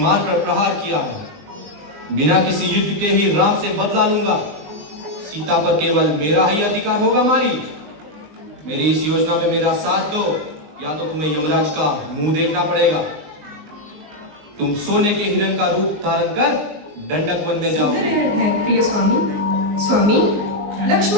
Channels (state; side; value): late; left; 19 ms